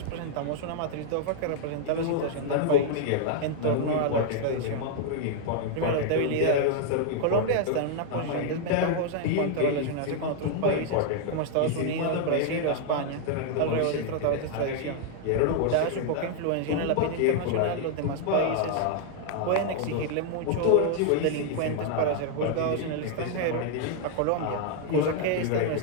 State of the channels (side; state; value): both; different; correlation 0.00